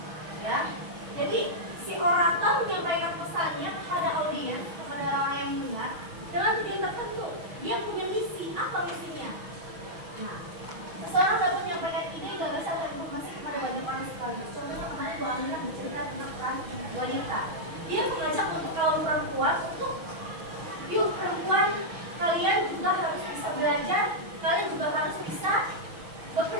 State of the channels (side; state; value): left; late; 6.2 ms